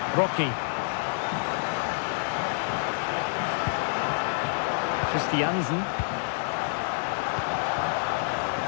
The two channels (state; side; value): silent; right; digital silence